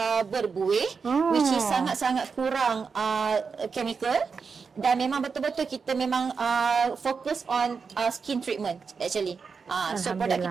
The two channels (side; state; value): left; quieter; 5.4 dB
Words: berbuih, which is sangat-sangat kurang chemical. Dan memang betul-betul kita memang fokus on skin treatment actually. So produk